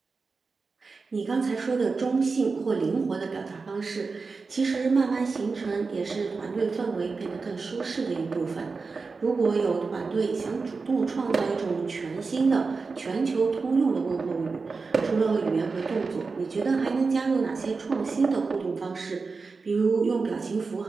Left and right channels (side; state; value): left; quieter; 4.4 dB